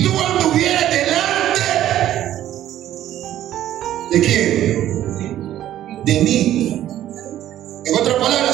tú anduvieras delante ¿de quién? De mí. En otras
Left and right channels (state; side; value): quieter; left; 12.5 dB